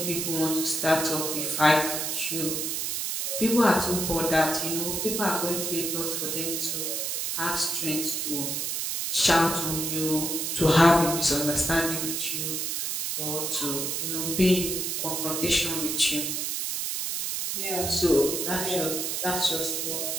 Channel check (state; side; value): noise; right; hiss, 1 dB below the sound